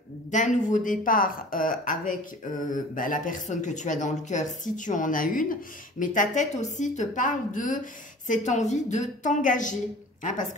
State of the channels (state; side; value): normal; both; correlation 0.44